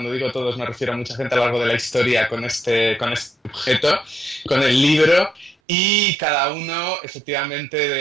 digo todos me refiero a mucha gente a lo largo de la historia con este objeto, con el libro, y cada uno efectivamente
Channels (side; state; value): left; drops out; at 5.6 s